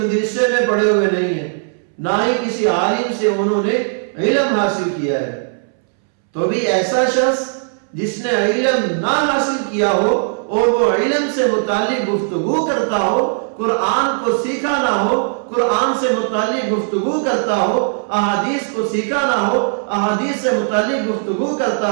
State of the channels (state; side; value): silent; left; 68 dB below the other